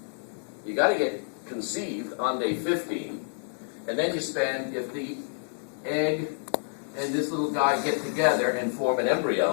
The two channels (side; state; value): right; silent; 59 dB below the other